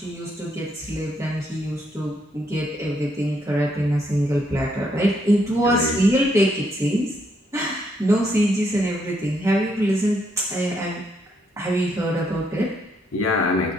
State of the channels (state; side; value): normal; both; correlation 0.74